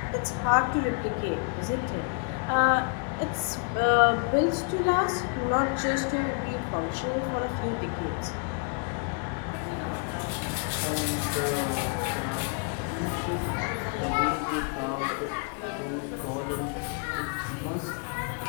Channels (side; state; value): right; quieter; 38.2 dB